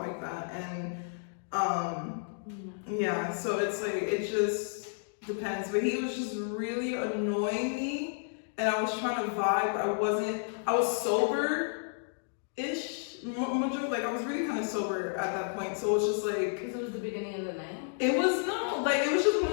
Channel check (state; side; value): silent; right; digital silence